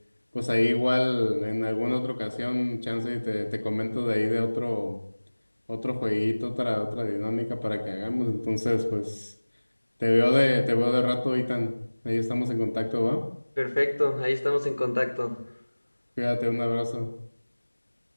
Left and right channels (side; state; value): both; inverted; correlation -1.00